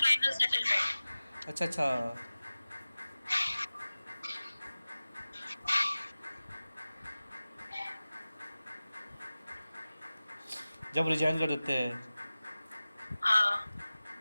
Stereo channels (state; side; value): inverted; both; correlation -0.97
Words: final settlement. अच्छा अच्छा। जब रिजाइन कर देते हैं। हाँ,